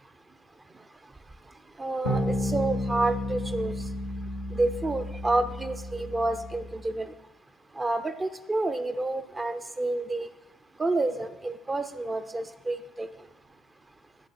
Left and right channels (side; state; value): both; normal; correlation 0.89